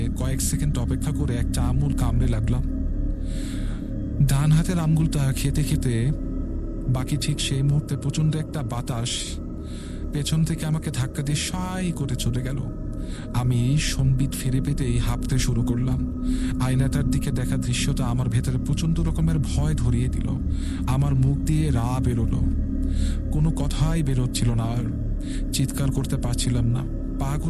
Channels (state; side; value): identical; both; correlation 1.00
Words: কয়েক সেকেন্ড অপেক্ষা করে একটা আঙুল কামড়ে লাগলাম। ডান হাতের আঙুলটা খেতে খেতে বাকি ঠিক সেই মুহূর্তে প্রচন্ড একটা বাতাস পেছন থেকে আমাকে ধাক্কা দিয়ে সাই করে চলে গেল। আমি সম্বিত ফিরে পেতেই হাঁপতে শুরু করলাম। আয়নাটার দিকে দেখা দৃশ্যটা আমার ভেতরে প্রচন্ড রকমের ভয় ধরিয়ে দিল। আমার মুখ দিয়ে রা বেরোলো, কোনো কথাই বেরোচ্ছিল না, আর চিৎকার করতে পারছিলাম না।